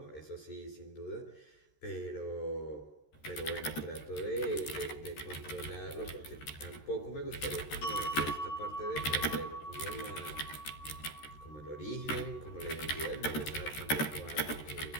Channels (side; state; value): right; late; 13 ms